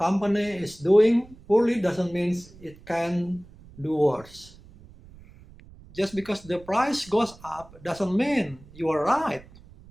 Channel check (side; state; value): right; noise; rumble, 22 dB below the sound